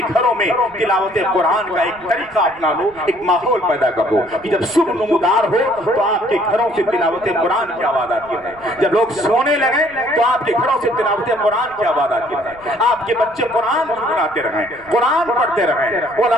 گھروں میں تلاوت قرآن کا ایک طریقہ اپنا لو، ایک ماحول پیدا کر دو کہ جب صبح نمودار ہو تو آپ کے گھروں سے تلاوت قرآن کی آواز آتی ہے، جب لوگ سونے لگے تو آپ کے گھروں سے تلاوت قرآن کی آواز آتی ہے، آپ کے بچے قرآن گنگناتے رہیں، قرآن پڑھتے رہیں،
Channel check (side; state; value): right; noise; rumble, 26 dB below the sound